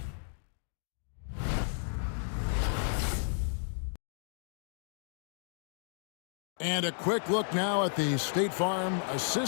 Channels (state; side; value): silent; right; digital silence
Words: And a quick look now at the State Farm